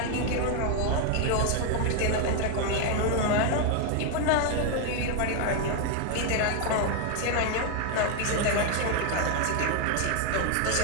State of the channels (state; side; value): different; both; correlation 0.01